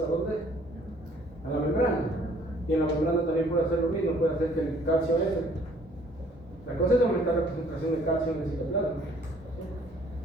dónde? A la membrana. Y en la membrana también puede hacer lo mismo, puede hacer que el calcio entre. La cosa es aumentar la concentración de calcio en el citoplasma.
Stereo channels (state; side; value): normal; both; correlation 0.59